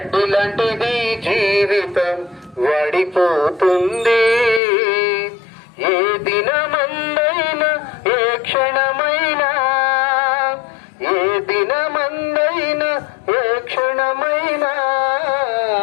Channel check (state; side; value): drops out; right; at 4.6 s